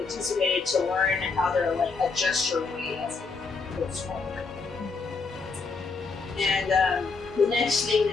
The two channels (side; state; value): right; quieter; 4.4 dB